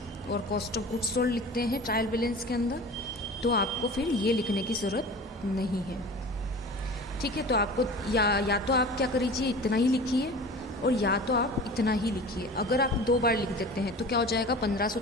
और कॉस्ट ऑफ गुड्स सोल्ड लिखते हैं ट्रायल बैलेंस के अंदर, तो आपको फिर ये लिखने की ज़रूरत नहीं है, ठीक है। तो आपको या तो आप क्या करिए, इतना ही लिखिए, और या तो आप इतना ही लिखिए। अगर आप 2 बार लिख देते हैं तो क्या हो जाएगा? 1500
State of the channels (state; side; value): normal; both; correlation 0.38